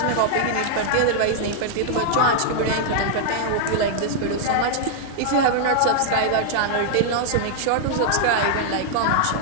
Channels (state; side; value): different; both; correlation -0.01